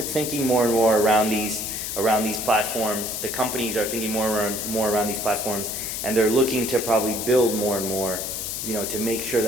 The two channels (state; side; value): noise; left; hiss, 4 dB below the sound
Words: around these platforms. The companies are thinking more around these platforms, and they're looking to probably build more and more, to make sure